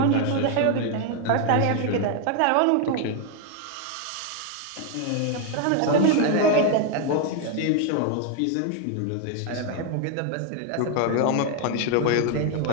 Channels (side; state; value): both; different; correlation 0.00